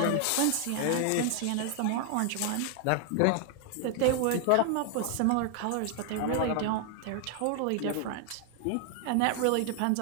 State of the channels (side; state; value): both; different; correlation 0.00